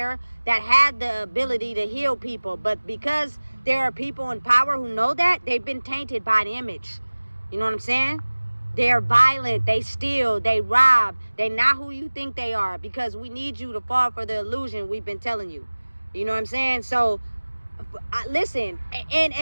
that had the ability to heal people. But because there are people in power who know that, they've been tainted by the image. You know what I'm saying? They're violent. They steal. They rob. They're not who you think they are, because we need you to fall for the illusion we've been telling you. You know what I'm saying? So, listen. And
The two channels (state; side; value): inverted; both; correlation -1.00